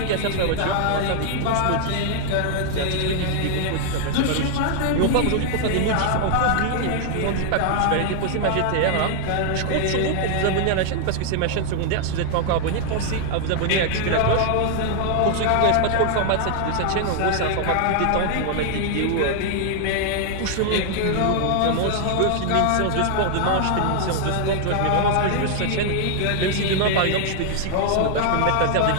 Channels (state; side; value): different; both; correlation 0.00